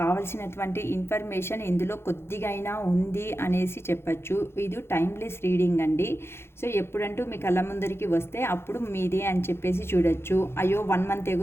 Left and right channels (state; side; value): late; right; 0.12 ms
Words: ఇన్ఫర్మేషన్ ఇందులో కొద్దిగా అయినా ఉంది అనేసి చెప్పచ్చు. ఇది టైమ్లెస్ రీడింగ్ అండి. సో ఎప్పుడంటూ మీ కళ్ళ ముందరికి వస్తే అప్పుడు మీదే అని చెప్పేసి చూడొచ్చు. అయ్యో 1 మంత్